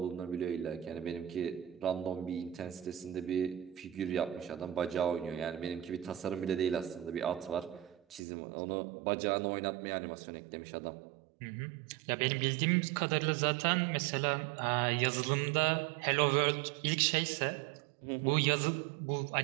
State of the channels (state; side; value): drops out; left; at 8.2 s